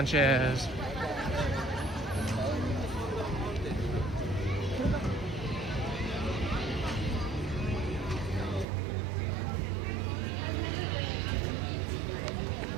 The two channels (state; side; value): drops out; left; at 8.7 s